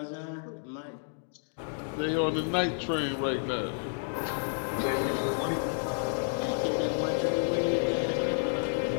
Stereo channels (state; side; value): silent; right; digital silence